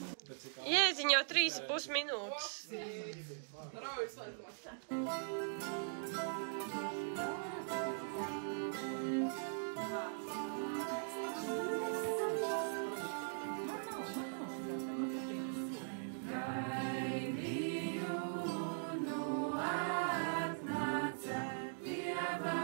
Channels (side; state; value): left; silent; digital silence